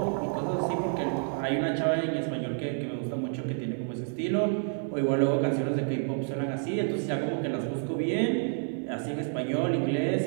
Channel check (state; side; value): silent; left; 58 dB below the other